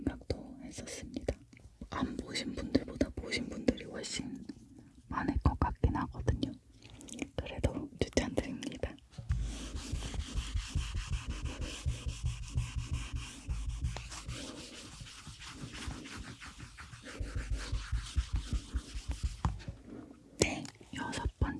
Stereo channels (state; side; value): identical; both; correlation 1.00